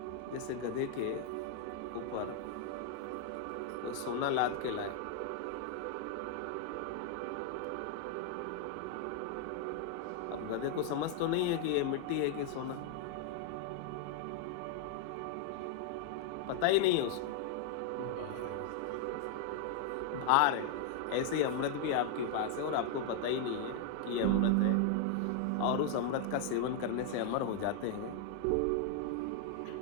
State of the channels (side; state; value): both; different; correlation 0.00